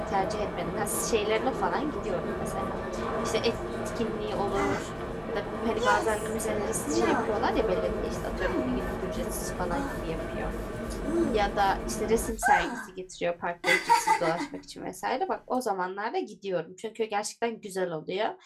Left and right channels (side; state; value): both; identical; correlation 1.00